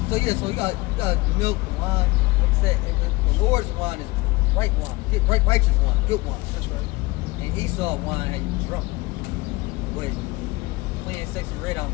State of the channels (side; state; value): right; quieter; 21.8 dB